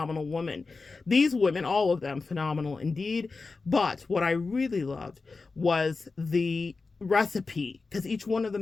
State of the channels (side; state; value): right; quieter; 4.1 dB